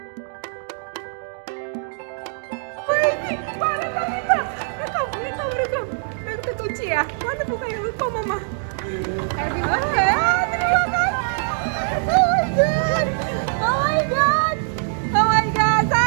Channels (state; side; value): silent; left; digital silence